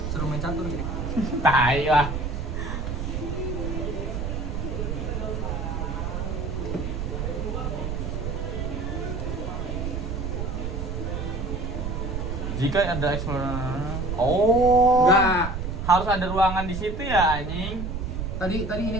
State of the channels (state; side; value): noise; right; rumble, 3 dB below the sound